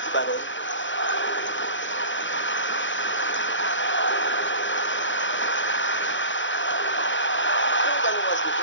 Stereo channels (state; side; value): late; right; 0.55 ms